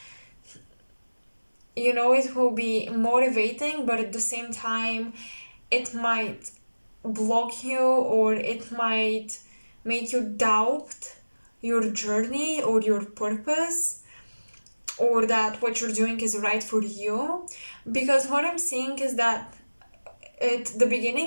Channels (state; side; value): inverted; both; correlation -1.00